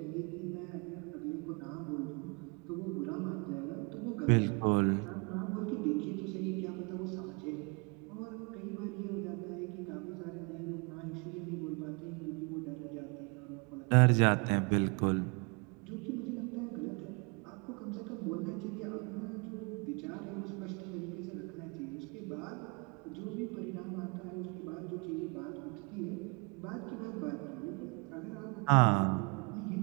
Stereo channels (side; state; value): left; quieter; 31.4 dB